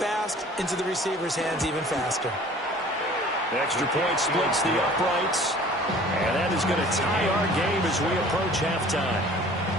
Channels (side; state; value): both; normal; correlation 0.48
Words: into the receiver's hands even faster. The extra point splits the uprights. And that is going to tie our game as we approach halftime.